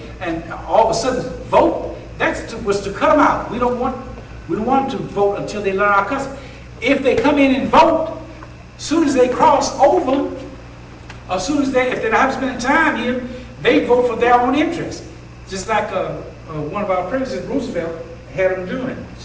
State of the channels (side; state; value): both; identical; correlation 1.00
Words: and all of a sudden vote. That was to cut them out. We don't want them to vote until they learn our custom. If they come in and vote, as soon as they cross over, as soon as if they're not spending time here, they vote for their own interest. Just like one of our presidents, Roosevelt, had them doing.